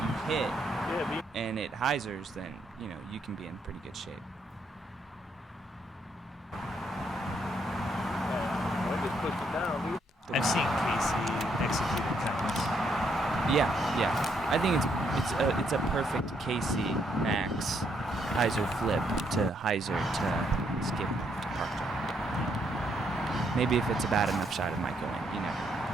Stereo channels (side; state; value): both; normal; correlation 0.74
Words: hit and it hyzers, then you know you can be in pretty good shape. I've seen Casey execute it cuts. Yeah. I think it's a perfect Casey Max hyzer flip to hyzer to skip to park jump. Maybe if it's a bad enough shot, it might go in. You never know.